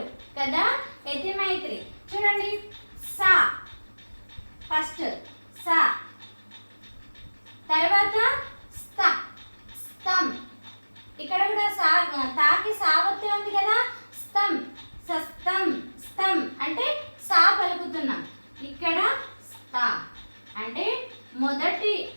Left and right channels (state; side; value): inverted; both; correlation -1.00